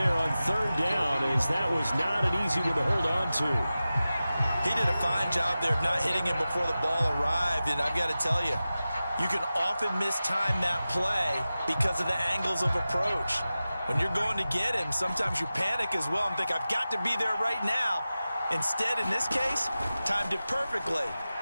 on 3rd down, as that was not an easy one to hold on to. He did a fine job there of not hitting him before the ball arrived, and I've got to tell you, you can often mistime that play because of the angles of approach. When you're going to get him, sometimes you panic as well and think, I've got to be there right now. Instead, in this case, timed it perfectly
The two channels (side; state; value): both; inverted; correlation -0.95